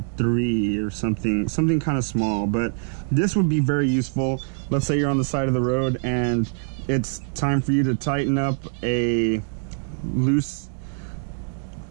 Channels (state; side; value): silent; left; 63 dB below the other